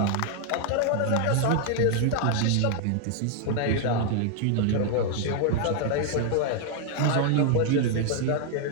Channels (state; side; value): different; both; correlation 0.00